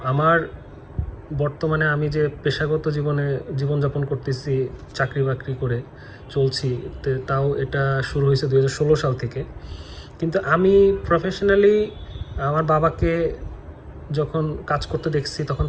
আমার বর্তমানে আমি যে পেশাগত জীবনযাপন করতেছি, চাকরি বাকরি করে চলছি, তাও এটা শুরু হয়েছে 2016 সাল থেকে। কিন্তু আমি প্রফেশনালি আমার বাবাকে যখন কাজ করতে দেখছি, তখন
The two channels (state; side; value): identical; both; correlation 1.00